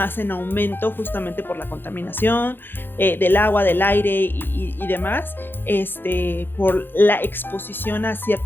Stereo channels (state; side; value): late; right; 0.10 ms